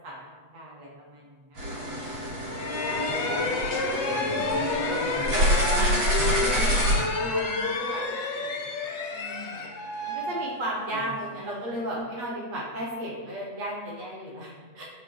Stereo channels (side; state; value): left; late; 8.2 ms